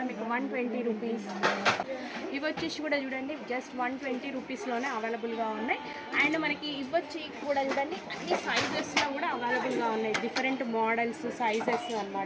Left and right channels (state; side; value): identical; both; correlation 1.00